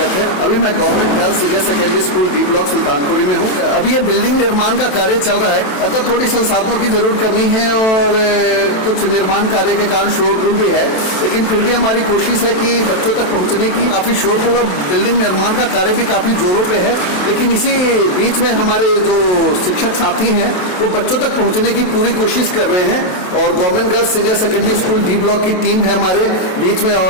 है। अभी मैं government girls senior secondary school D block Sultanpuri में हूँ। अभी ये बिल्डिंग निर्माण का कार्य चल रहा है, अतः थोड़ी संसाधनों की जरूर कमी है और कुछ निर्माण कार्य के कारण शोरगुल भी है, लेकिन फिर भी हमारी कोशिश है कि बच्चों तक पहुँचने की। काफ़ी शोरगुल और बिल्डिंग निर्माण का कार्य भी काफ़ी जोरों पे है, लेकिन इसी बीच में हमारे जो शिक्षक साथी हैं वो बच्चों तक पहुँचने की पूरी कोशिश कर रहे हैं। और government girls senior secondary school D block की टीम है हमारे बीच में,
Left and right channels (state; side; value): late; right; 27 ms